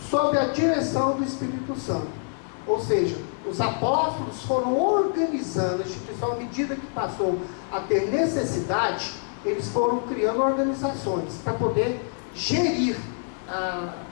sob a direção do Espírito Santo. Ou seja, os apóstolos foram organizando a instituição à medida que passou a ter necessidade, eles foram criando organizações para poder gerir,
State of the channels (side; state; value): right; silent; 61 dB below the other